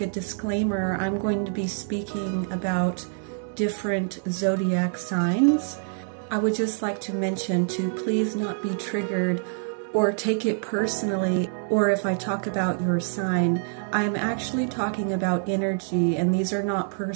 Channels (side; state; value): left; silent; 61 dB below the other